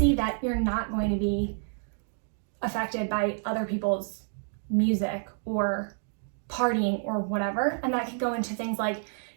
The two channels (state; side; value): silent; left; digital silence